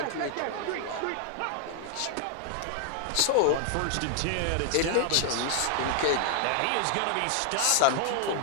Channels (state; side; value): different; both; correlation 0.00